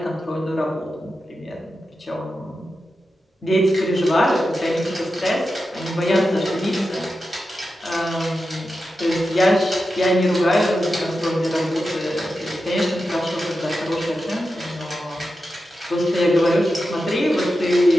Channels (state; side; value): normal; both; correlation 0.90